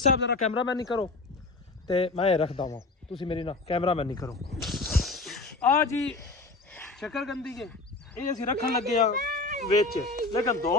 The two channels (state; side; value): quieter; right; 3.4 dB